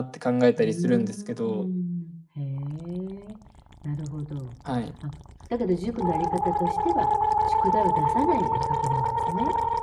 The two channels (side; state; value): both; identical; correlation 1.00